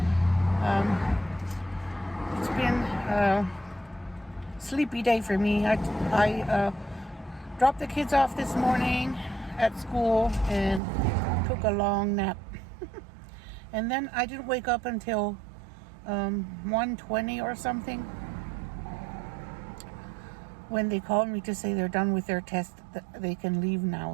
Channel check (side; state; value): left; drops out; at 10.8 s